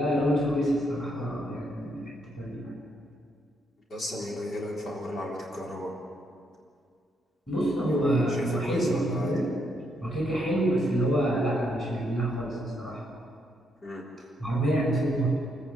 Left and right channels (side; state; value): both; normal; correlation 0.76